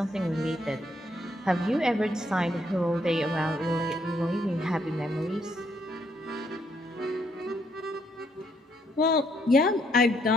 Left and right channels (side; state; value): both; normal; correlation 0.72